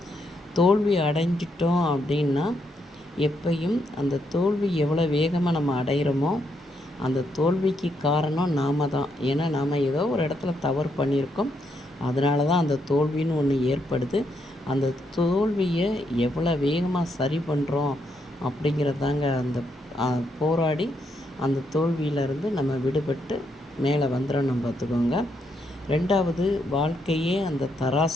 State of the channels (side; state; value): both; normal; correlation 0.78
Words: தோல்வி அடைஞ்சிட்டோம் அப்படின்னா எப்பையும் அந்த தோல்வி எவ்வளோ வேகமாக நம்ம அடைகிறோமோ அந்த தோல்விக்கு காரணம் நாம் தான். ஏன்னா நாம் ஏதோ ஒரு இடத்துல தவறு பண்ணியிருக்கோம், அதனால தான் அந்த தோல்வின்னு ஒன்று ஏற்படுது. அந்த தோல்வியை எவ்வளோ வேகமாக சரி பண்ணுறோம் அப்படிங்கிறதாங்க அந்த போராடி அந்த தோல்வியிலேருந்து நம்ம விடுபட்டு மேலே வந்துடணும், பார்த்துக்கோங்க. ரெண்டாவது, வாழ்க்கையே அந்த